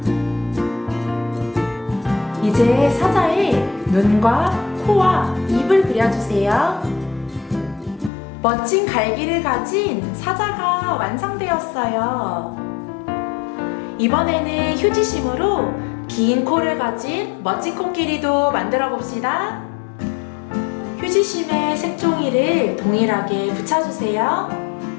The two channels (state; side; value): drops out; right; at 8.1 s